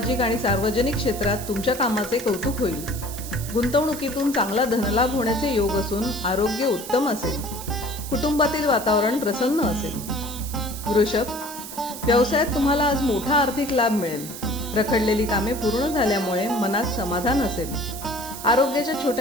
आणि सार्वजनिक क्षेत्रात तुमच्या कामाचे कौतुक होईल। गुंतवणुकीतून चांगला धनलाभ होण्याचे योग असून आरोग्य उत्तम असेल। कुटुंबातील वातावरण प्रसन्न असेल। वृषभ, व्यवसायात तुम्हाला आज मोठा आर्थिक लाभ मिळेल। रखडलेली कामे पूर्ण झाल्यामुळे मनात समाधान असेल। आरोग्याच्या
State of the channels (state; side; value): noise; right; hiss, 11 dB below the sound